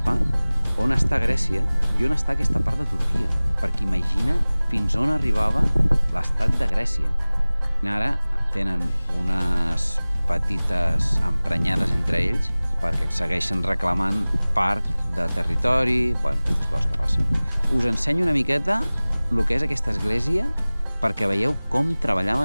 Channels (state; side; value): inverted; both; correlation -0.99